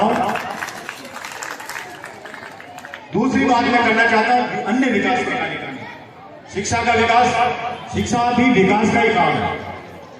हूं। दूसरी बात मैं करना चाहता हूं, अन्य विकास के कार्यक्रम, शिक्षा का विकास, शिक्षा भी विकास का ही काम है।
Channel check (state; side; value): identical; both; correlation 1.00